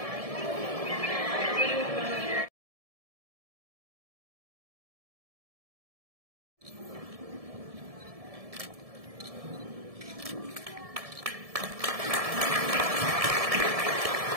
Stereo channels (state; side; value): late; left; 1.7 ms